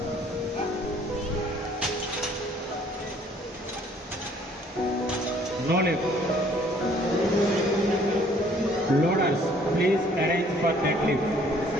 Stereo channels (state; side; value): normal; both; correlation 0.59